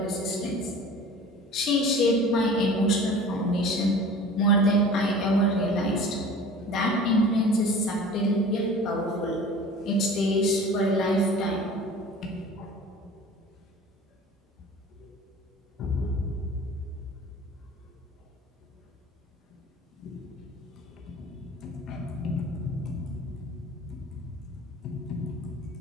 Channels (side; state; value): both; normal; correlation 0.42